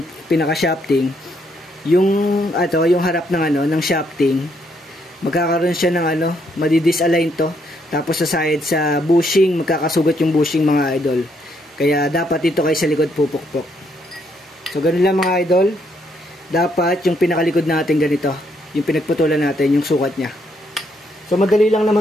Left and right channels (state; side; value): normal; both; correlation 0.73